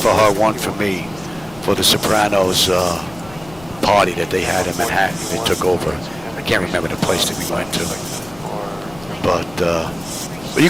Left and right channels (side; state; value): left; noise; rumble, 21 dB below the sound